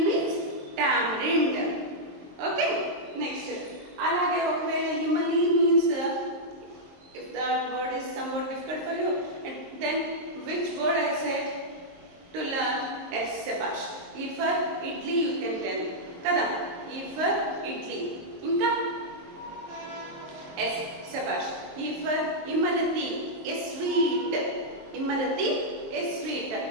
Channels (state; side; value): late; left; 22 ms